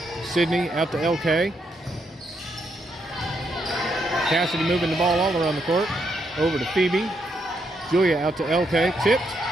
Sidney out to LK. Casady moving the ball all around the court. Over to Phoebe. Julia out to LK. Tipped.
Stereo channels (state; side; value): normal; both; correlation 0.78